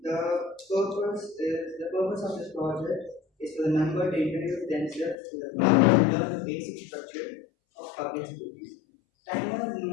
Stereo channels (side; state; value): right; drops out; at 5.2 s